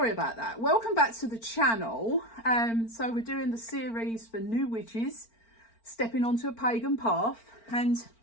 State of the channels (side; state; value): right; late; 4.4 ms